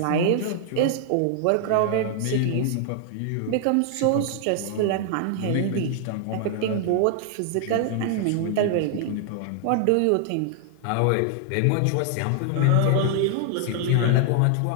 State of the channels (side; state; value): both; different; correlation 0.00